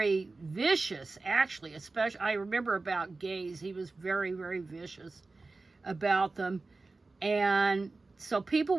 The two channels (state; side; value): quieter; left; 3.6 dB